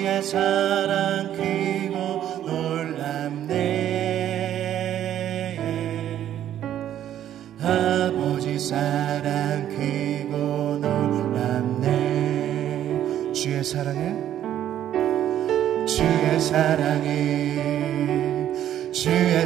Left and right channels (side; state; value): left; quieter; 11.2 dB